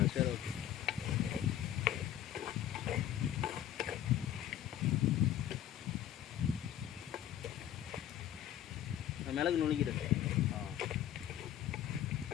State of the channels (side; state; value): right; quieter; 11.1 dB